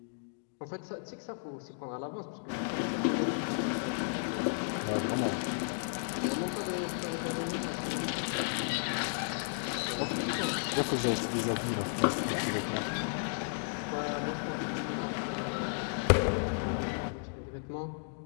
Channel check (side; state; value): right; silent; digital silence